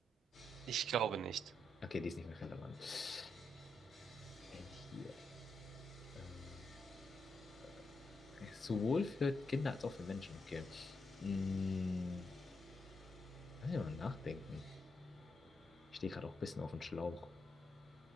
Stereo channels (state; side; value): normal; both; correlation 0.82